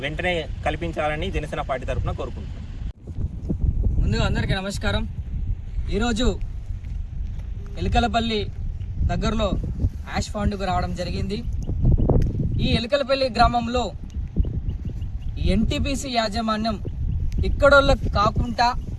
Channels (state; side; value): identical; both; correlation 1.00